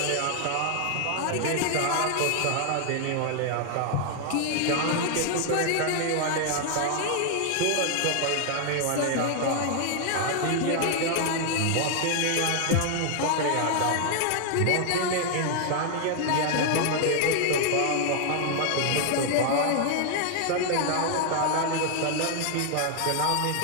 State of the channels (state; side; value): different; both; correlation 0.00